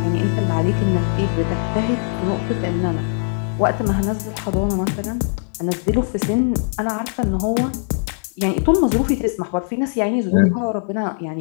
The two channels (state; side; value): silent; right; 65 dB below the other